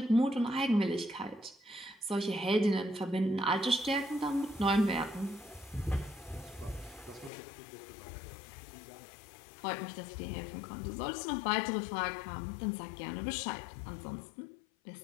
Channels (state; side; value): drops out; right; at 7.3 s